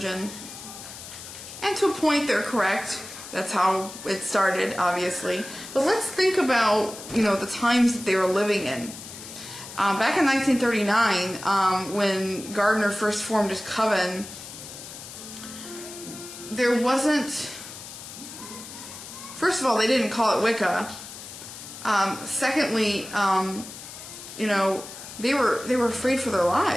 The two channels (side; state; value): left; noise; hiss, 13 dB below the sound